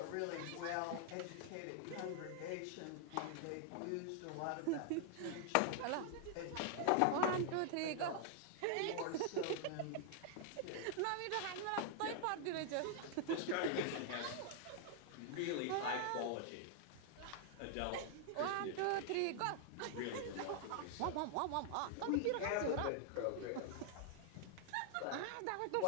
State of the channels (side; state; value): both; different; correlation 0.00